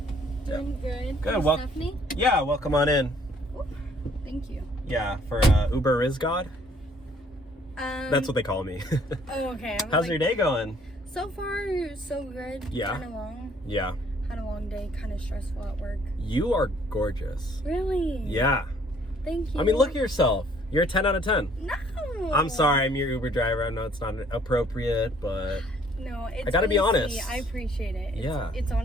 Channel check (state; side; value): normal; both; correlation 0.61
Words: Doing good. Good. Well, Stephanie? yeah, welcome on in. Ooh, thank you. Yeah, for Uber is God. That's what they call me. Oh, okay. How's your day going? So far, so good. Yeah. Kind of long. Yeah. Had a long day. Kind of stressful at work. You are gorgeous. Really? Yeah. Thank you. I mean, look at yourself. You're a 10 out of 10. No. I'm sorry, I'm your Uber driver. I know it's not appropriate, but No, it's I gotta be honestly, honest. I appreciate it. Yeah. It's